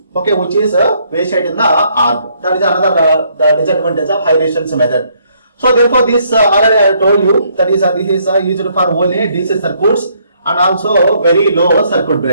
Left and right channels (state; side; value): inverted; both; correlation -0.69